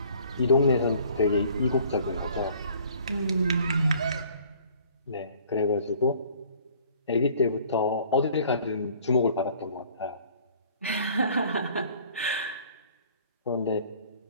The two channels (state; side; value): inverted; both; correlation -0.54